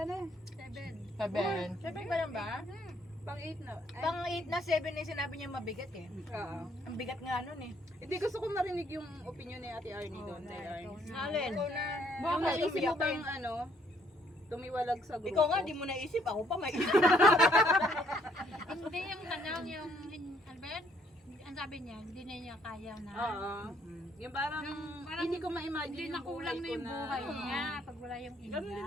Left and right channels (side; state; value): both; normal; correlation 0.66